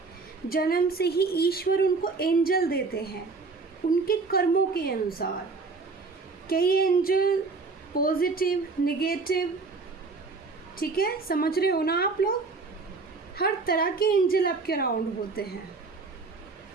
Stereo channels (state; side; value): quieter; left; 4.1 dB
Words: जन्म से ही ईश्वर उनको एंजल देते हैं उनके कर्मों के अनुसार। कई एंजल पॉजिटिव, नेगेटिव, ठीक है, समझ रहे हो ना आप लोग, हर तरह के एंजल आपके अराउंड होते हैं।